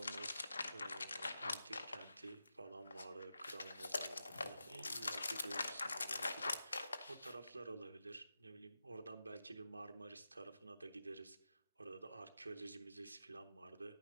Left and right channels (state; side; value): inverted; both; correlation -0.89